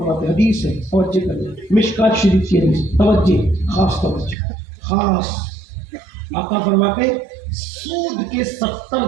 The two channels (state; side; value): drops out; left; at 4.4 s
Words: حدیث ہے، توجہ کریں، مشکات شریف کی حدیث، توجہ، خاص توجہ، خاص۔ آقا فرماتے ہیں سود کے 70